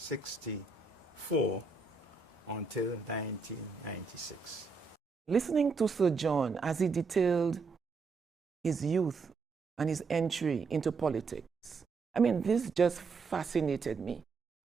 until 1996. Listening to Sir John as he detailed his youth and his entry into politics, I mean, this just fascinated me.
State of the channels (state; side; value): quieter; left; 4.5 dB